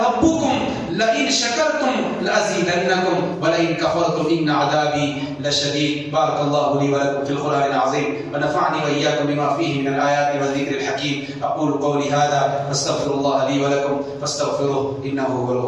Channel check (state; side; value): identical; both; correlation 1.00